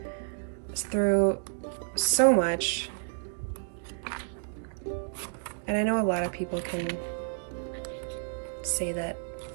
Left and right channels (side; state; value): left; silent; digital silence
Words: through so much. And I know a lot of people can say that